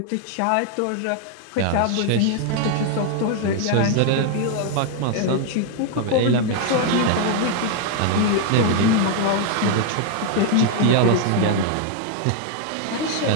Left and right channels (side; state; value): both; different; correlation 0.00